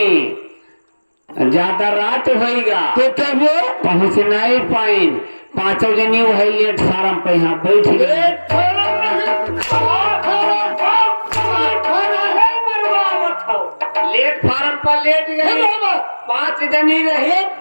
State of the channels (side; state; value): both; inverted; correlation -1.00